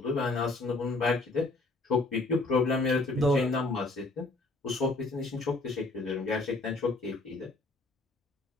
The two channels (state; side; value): quieter; right; 3.1 dB